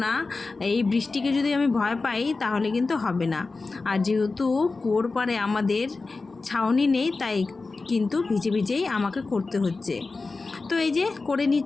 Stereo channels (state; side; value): quieter; right; 3.8 dB